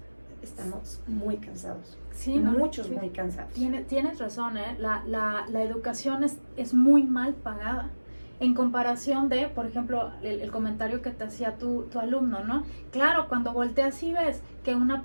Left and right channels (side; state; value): both; inverted; correlation -1.00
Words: Estamos muy cansados. Sí, muchos muy cansados. Tienes razón, ¿eh? La educación es muy mal pagada. En comparación de, por ejemplo, el comentario que te hacía tu alumno, ¿no? Claro, cuando volteas y ves que una